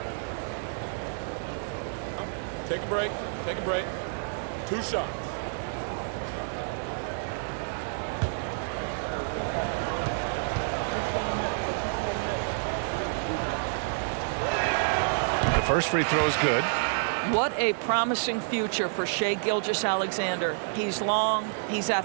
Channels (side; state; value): left; silent; digital silence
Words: Take a break. Take a break. 2 shots. The first free throw is good. What a promising future for Shai Gilgeous-Alexander. He's long, he's